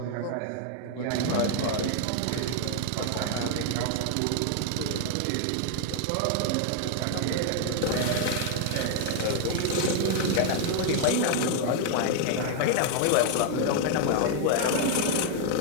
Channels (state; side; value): different; both; correlation 0.00